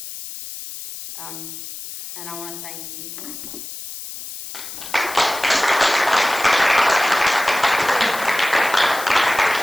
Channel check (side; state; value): left; noise; hiss, 11 dB below the sound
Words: And I want to thank you.